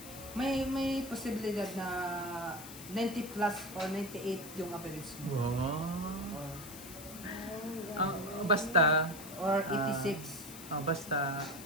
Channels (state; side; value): noise; left; hiss, 14 dB below the sound